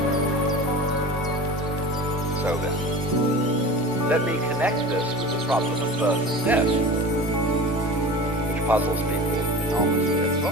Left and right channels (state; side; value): normal; both; correlation 0.34